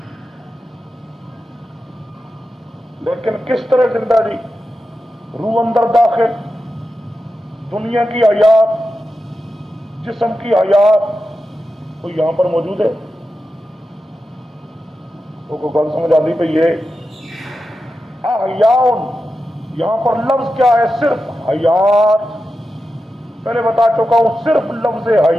لیکن کس طرح زندہ جی؟ روح اندر داخل، دنیا کی حیات، جسم کی حیات کوئی یہاں پر موجود ہے؟ تو کوئی گل سمجھ آتی پہ یہ احیاؤن، یہاں پر لفظ کیا ہے؟ صرف حیات. پہلے بتا چکا ہوں صرف لفظ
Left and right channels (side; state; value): both; normal; correlation 0.91